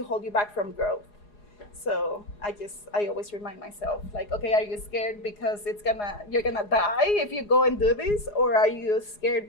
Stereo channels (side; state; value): right; late; 4.8 ms